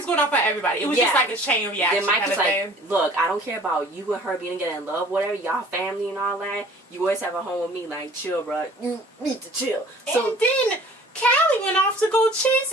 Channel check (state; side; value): normal; both; correlation 0.50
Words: going off on everybody. It was just like a chain reaction. Then Mike was like, look, I don't care about you and her being together in love, whatever, y'all family and all that. You always have a home with me. Like, chill, bro. You need to chill. So, and then... Callie went off to go chase